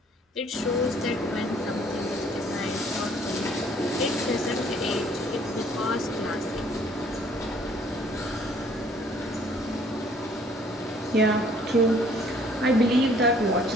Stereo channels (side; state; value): both; normal; correlation 0.59